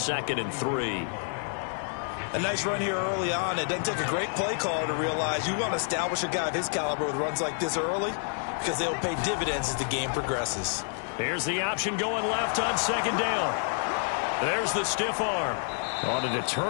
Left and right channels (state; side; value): silent; right; 59 dB below the other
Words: and 3. A nice run here early on. It doesn't take a great play caller to realize you want to establish a guy of his caliber with runs like this early because they'll pay dividends as the game progresses. Here's the option going left on 2nd down. There's the stiff arm. On a